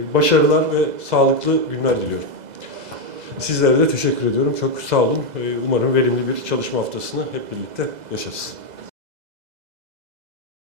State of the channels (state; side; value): late; left; 2.0 ms